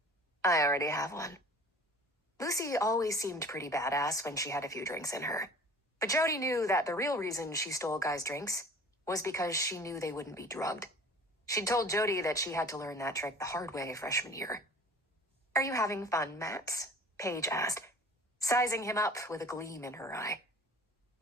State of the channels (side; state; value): both; normal; correlation 0.45